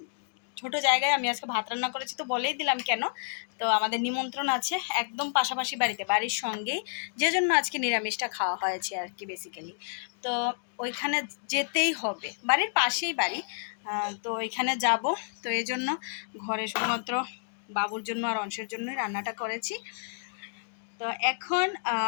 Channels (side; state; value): right; silent; digital silence